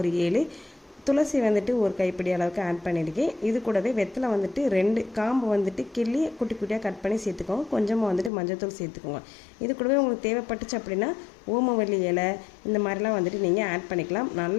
ஒரு 7, துளசி வந்துட்டு ஒரு கைப்பிடி அளவுக்கு ஆட் பண்ணியிருக்கேன். இது கூடவே வெத்தலை வந்துட்டு 2 காம்பு வந்துட்டு கிள்ளி குட்டி குட்டியாக கட் பண்ணி சேர்த்துக்கோங்க. கொஞ்சமாக வந்துட்டு மஞ்சள்தூள் சேர்த்துக்கோங்க. இது கூடவே உங்களுக்கு தேவைப்பட்டுச்சு அப்படின்னா ஓமவல்லி இலை இந்த மாதிரிலாம் வந்துட்டு நீங்கள் ஆட் பண்ணிக்கலாம்.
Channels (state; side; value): drops out; right; at 8.3 s